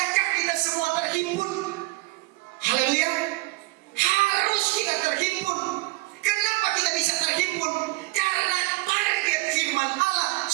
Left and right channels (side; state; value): left; quieter; 22.2 dB